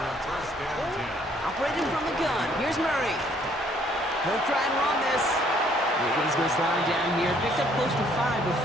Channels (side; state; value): both; normal; correlation 0.63